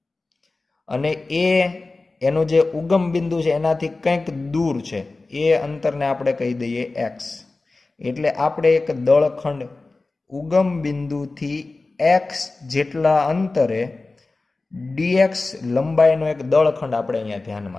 અને એનો જે ઉગમ બિંદુ છે એનાથી કંઈક દૂર છે, એ અંતરને આપણે કહી દઈએ x. એટલે આપણે એક દળખંડ ઉગમ બિંદુથી x જેટલા અંતરે dx લંબાઈનો એક દળખંડ આપણે અહીંયા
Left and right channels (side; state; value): right; quieter; 3.4 dB